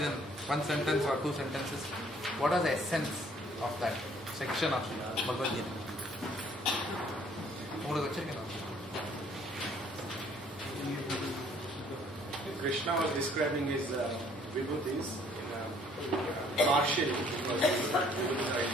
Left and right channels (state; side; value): normal; both; correlation 0.61